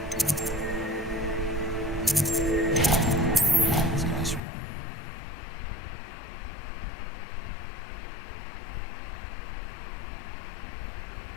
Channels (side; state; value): right; drops out; at 4.4 s